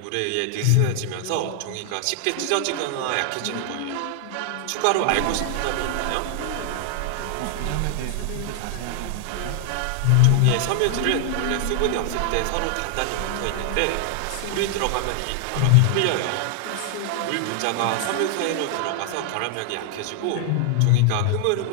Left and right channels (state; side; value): different; both; correlation 0.00